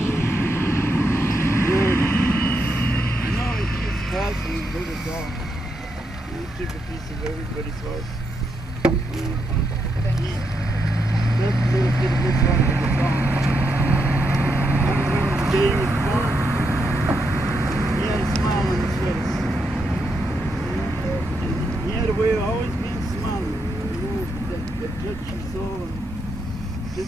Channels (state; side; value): normal; both; correlation 0.81